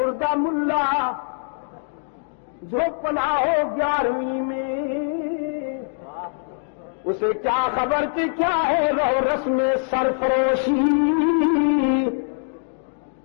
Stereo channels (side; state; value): right; silent; digital silence